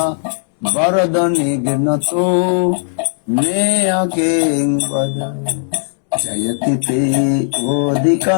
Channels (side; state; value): right; silent; 69 dB below the other